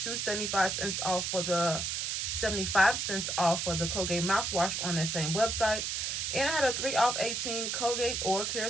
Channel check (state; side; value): noise; right; hiss, 1 dB below the sound